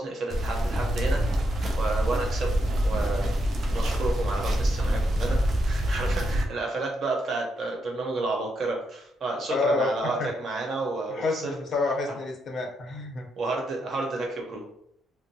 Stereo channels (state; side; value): normal; both; correlation 0.81